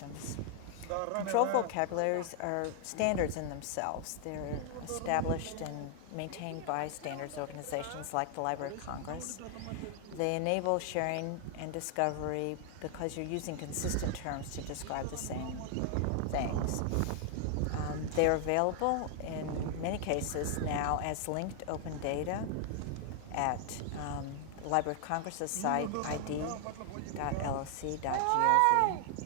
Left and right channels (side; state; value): both; different; correlation 0.00